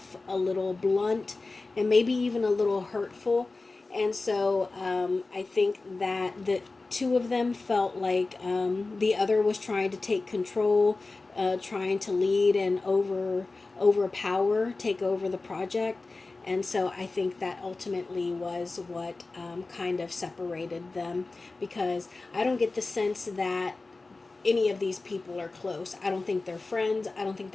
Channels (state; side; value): quieter; right; 3.5 dB